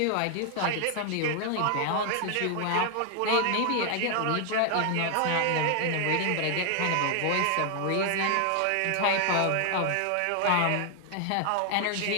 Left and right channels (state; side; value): different; both; correlation 0.00